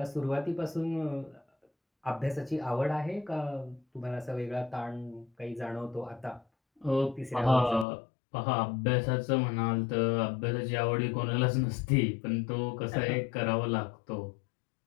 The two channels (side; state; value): right; drops out; at 7.9 s